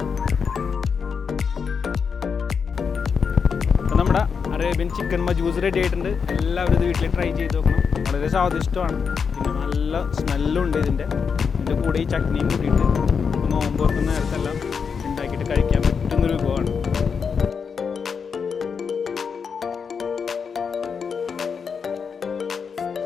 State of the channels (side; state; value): right; quieter; 6.1 dB